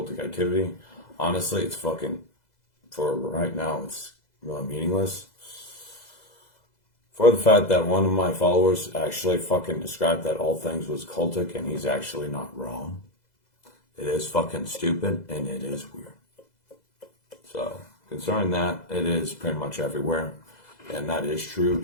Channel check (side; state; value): right; late; 2.0 ms